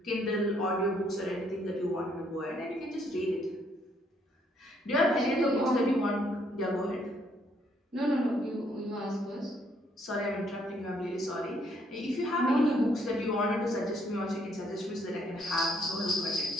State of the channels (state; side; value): normal; both; correlation 0.69